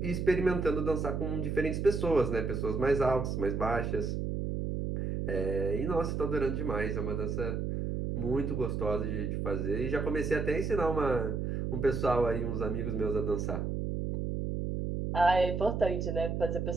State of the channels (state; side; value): noise; right; hum, 2 dB below the sound